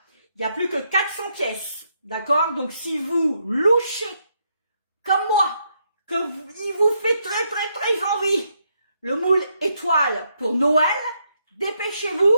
Il n'y a plus que 400 pièces. D'accord? Donc, si vous louchez, comme moi, il vous fait très envie, le moule étoile pour Noël, dépêchez-vous.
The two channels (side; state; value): both; inverted; correlation -0.77